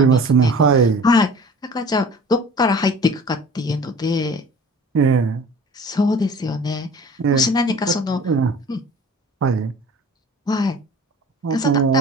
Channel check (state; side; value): normal; both; correlation 0.44